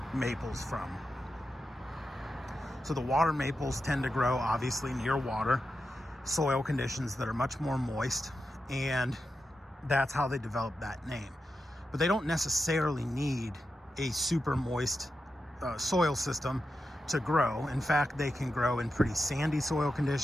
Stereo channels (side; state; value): both; normal; correlation 0.89